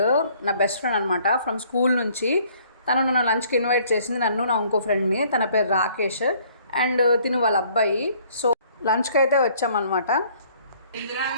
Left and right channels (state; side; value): inverted; both; correlation -0.60